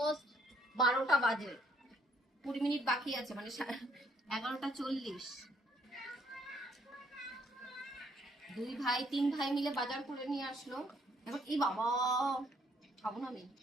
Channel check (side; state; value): both; normal; correlation 0.68